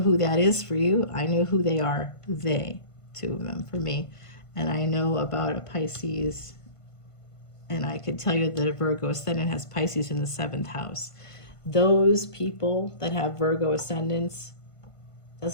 who that is for you. I know who they are. They, two of them for me. And I know about a Pisces, and I could tell you that a Virgo Ascendant has Pisces in the 7th house. Those people that have Virgo Ascendants,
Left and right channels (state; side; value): late; right; 1.5 ms